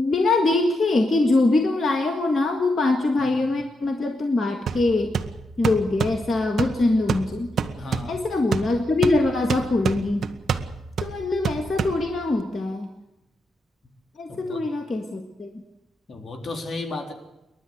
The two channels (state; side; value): normal; both; correlation 0.83